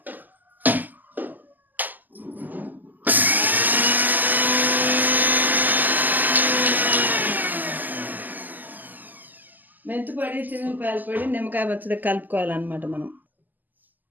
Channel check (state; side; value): late; left; 0.085 ms